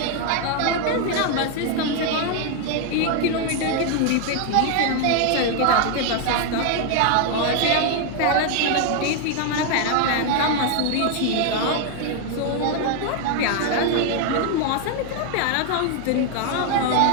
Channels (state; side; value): different; both; correlation 0.00